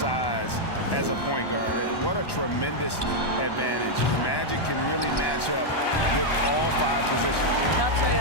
as a point guard, what a tremendous advantage. The Magic can really match up with all 5 positions. I'll tell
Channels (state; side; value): late; right; 1.1 ms